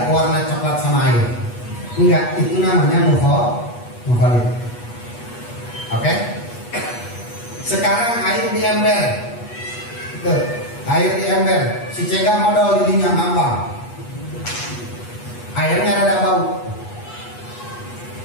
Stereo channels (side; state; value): right; late; 8.3 ms